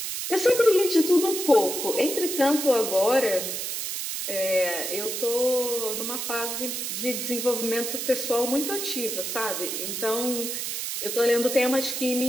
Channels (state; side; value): noise; right; hiss, 4 dB below the sound